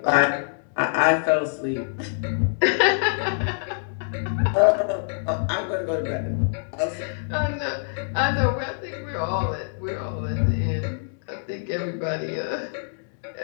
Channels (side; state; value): right; silent; digital silence